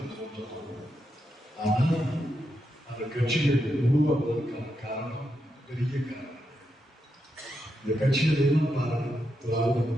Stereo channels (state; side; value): normal; both; correlation 0.84